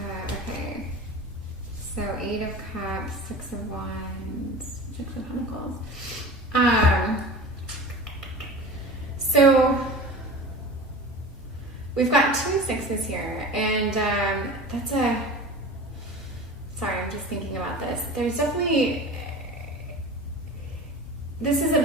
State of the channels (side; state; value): both; normal; correlation 0.35